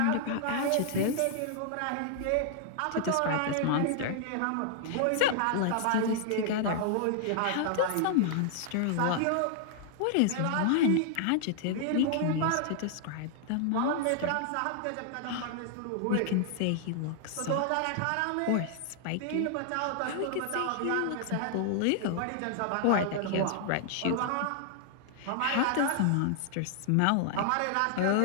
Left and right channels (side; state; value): both; different; correlation -0.01